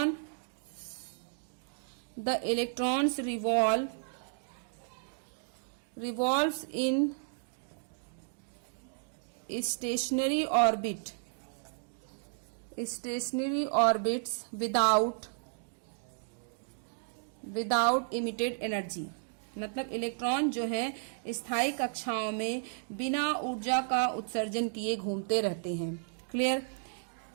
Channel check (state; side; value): silent; left; digital silence